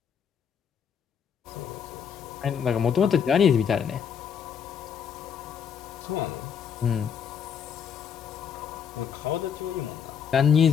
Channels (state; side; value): quieter; right; 7.5 dB